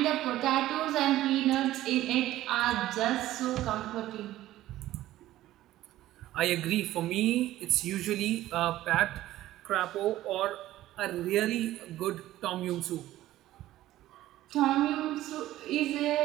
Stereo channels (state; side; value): quieter; left; 14.8 dB